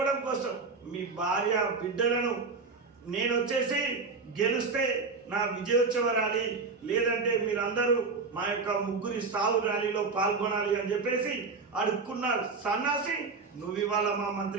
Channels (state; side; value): quieter; left; 4.4 dB